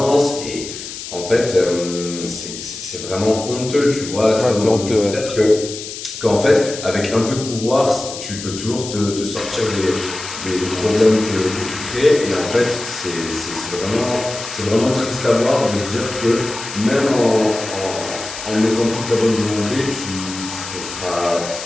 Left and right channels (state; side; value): noise; left; hiss, 10 dB below the sound